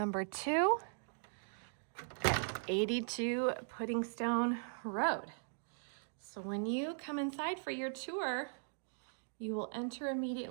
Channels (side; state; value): left; silent; digital silence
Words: 2 at 82 Puddingstone Road. So when you come inside for your tour, you will enter